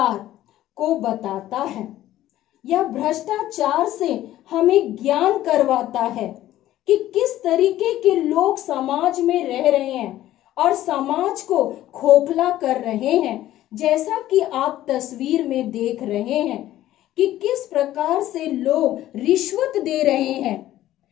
को बताता है, या भ्रष्टाचार से हमें ज्ञान करवाता है कि किस तरीके के लोग समाज में रह रहे हैं और समाज को खोखला कर रहे हैं। जैसा कि आप तस्वीर में देख रहे हैं कि किस प्रकार से लोग रिश्वत दे रहे हैं,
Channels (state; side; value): quieter; right; 13.9 dB